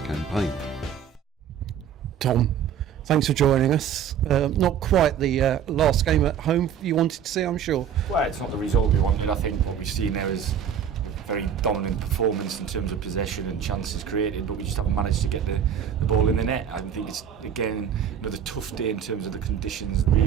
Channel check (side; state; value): left; quieter; 8.4 dB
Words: campaign. Tom, thanks for joining us. Not quite the last game at home you wanted to see, I'm sure. Well, it's not the result we wanted. I think what we've seen there is a very dominant performance in terms of possession and chances created, but we just haven't managed to get the ball in the net. I think it's, again, another tough day in terms of the conditions,